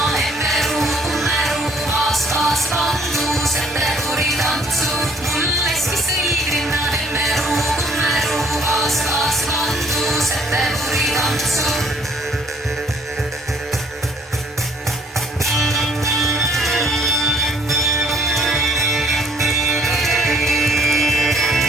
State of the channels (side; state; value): both; normal; correlation 0.61